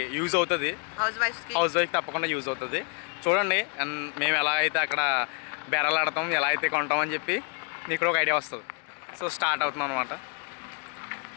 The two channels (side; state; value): right; quieter; 36.8 dB